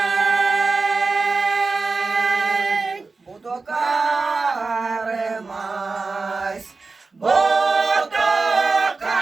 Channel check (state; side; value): quieter; left; 4.0 dB